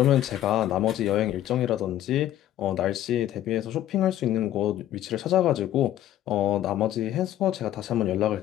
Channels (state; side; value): quieter; right; 12.5 dB